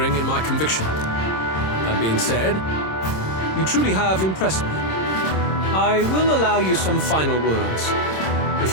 in my conviction. That being said, you truly have impressed me. I will allow you some final words,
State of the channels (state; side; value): late; right; 26 ms